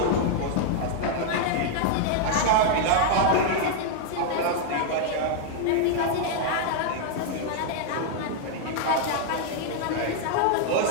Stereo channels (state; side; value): different; both; correlation 0.00